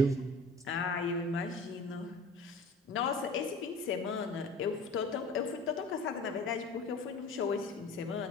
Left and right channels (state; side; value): normal; both; correlation 0.41